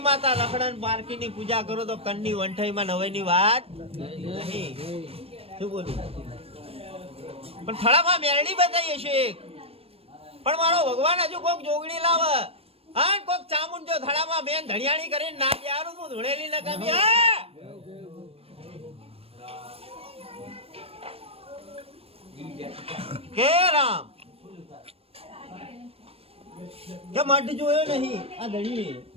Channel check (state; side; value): late; left; 0.28 ms